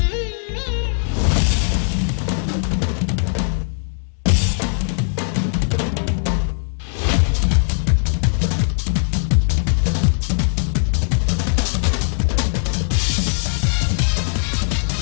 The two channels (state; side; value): silent; right; digital silence